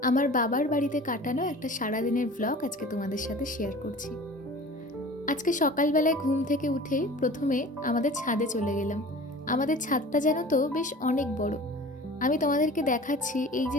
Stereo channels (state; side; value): normal; both; correlation 0.41